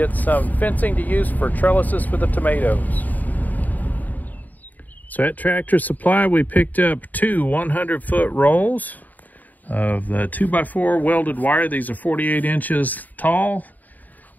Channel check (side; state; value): right; late; 0.082 ms